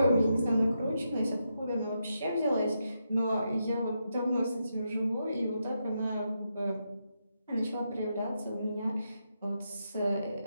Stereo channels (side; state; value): both; inverted; correlation -0.84